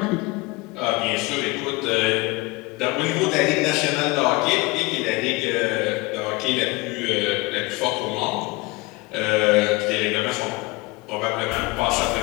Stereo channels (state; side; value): quieter; right; 23.3 dB